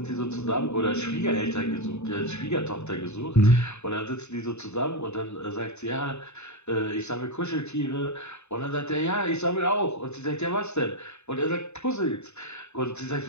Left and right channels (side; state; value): right; late; 0.82 ms